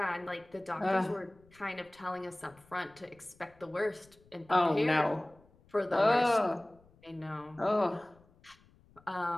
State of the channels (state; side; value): noise; left; rumble, 29 dB below the sound